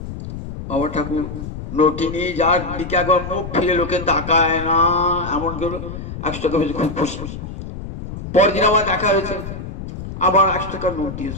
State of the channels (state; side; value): noise; left; rumble, 9 dB below the sound